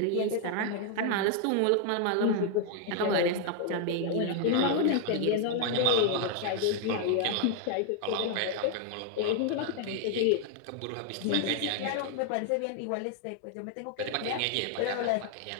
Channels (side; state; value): both; different; correlation 0.00